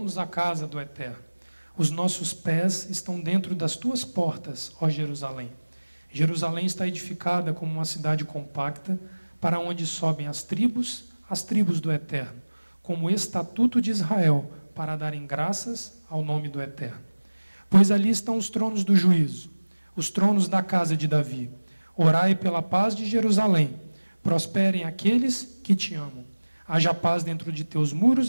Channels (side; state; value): both; inverted; correlation -1.00